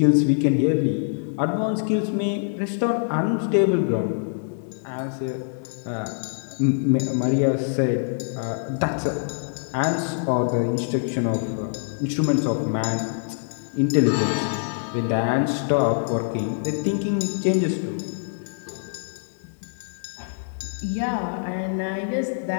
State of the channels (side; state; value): right; silent; digital silence